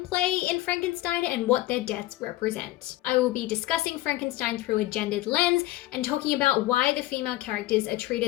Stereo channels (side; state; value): right; quieter; 16.9 dB